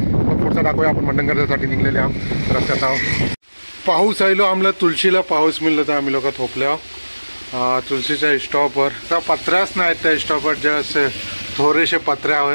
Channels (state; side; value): inverted; both; correlation -1.00